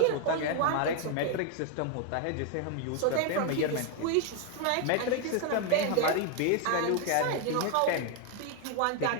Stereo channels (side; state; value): both; different; correlation 0.01